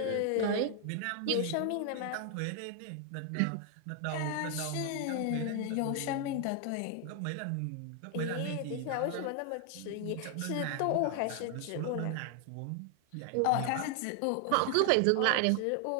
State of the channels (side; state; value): both; different; correlation 0.00